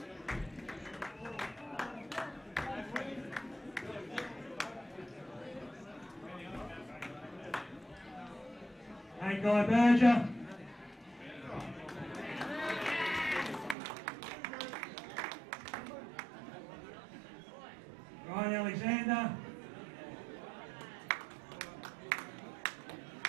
Hey, Guy Berger. Ryan Alexander.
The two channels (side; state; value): left; drops out; at 13.8 s